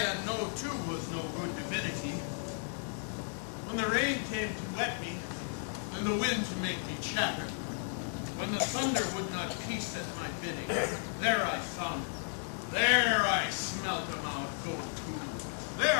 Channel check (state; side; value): silent; right; 55 dB below the other